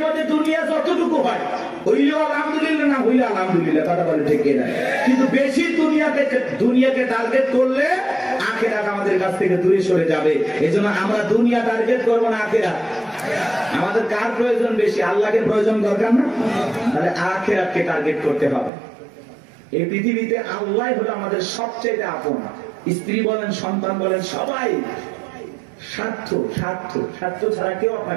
মধ্যে দুনিয়া যতটুকু হয় হইলেও আলহামদুলিল্লাহ, না হইলে আলহামদুলিল্লাহ। কথা বলে ঠিক না? কিন্তু বেশি দুনিয়াকে টার্গেট করলে আখিরাত আমাদের কাছ থেকে দূরে সরে যাবে। এজন্য আমরা দুনিয়া টার্গেট করবো না, আখিরাত। আমাদের কার প্রয়োজন বেশি? আল্লাহকে প্রয়োজন দরকার না? তাহলে আখিরাতকে টার্গেট করতে হবে। এই পৃথিবীতে আল্লাহ হলো আমাদের সবচেয়ে আপন। স্ত্রী বলেন, সন্তান বলেন, সবাই স্বার্থ, স্বার্থ, স্বার্থ ছাড়া কেউ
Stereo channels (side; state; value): left; drops out; at 18.7 s